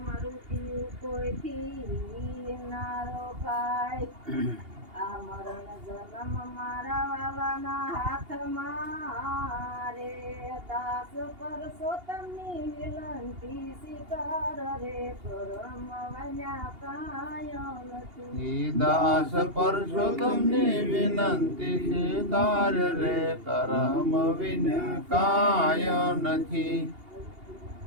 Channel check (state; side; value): late; left; 2.8 ms